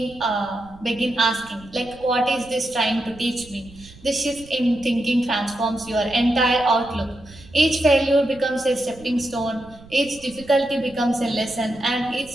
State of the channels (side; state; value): right; noise; rumble, 21 dB below the sound